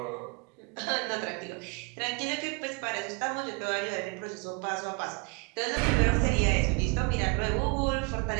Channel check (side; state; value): left; quieter; 30.5 dB